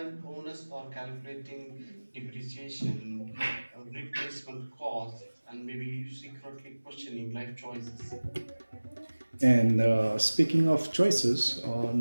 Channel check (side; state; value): both; inverted; correlation -1.00